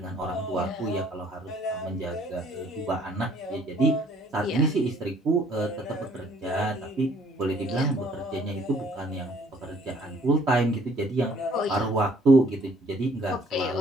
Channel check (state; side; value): normal; both; correlation 0.60